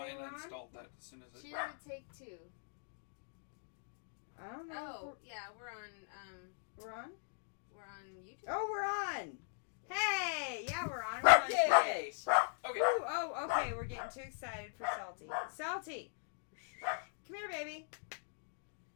say I we're on? installed that as soon as it. She didn't take 2. I don't know. Oh, yeah, we're on. We're on? We're on YouTube. Oh, we're on! Hey! Yeah, we're on. We're on Yay! Twitch. Okay. Ooh, oh, okay. We're getting too excited for Salty. Salty! Come here, baby.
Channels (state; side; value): silent; right; digital silence